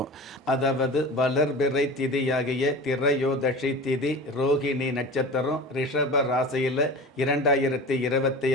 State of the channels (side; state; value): both; normal; correlation 0.34